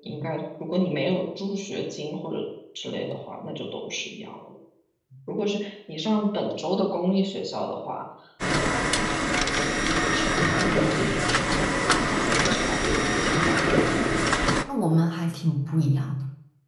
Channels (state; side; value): identical; both; correlation 1.00